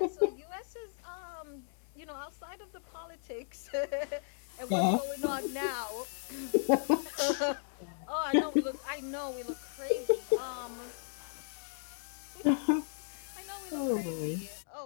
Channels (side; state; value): right; silent; digital silence